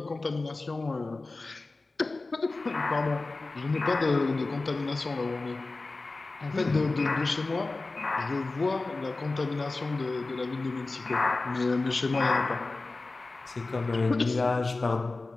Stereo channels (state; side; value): quieter; right; 3.4 dB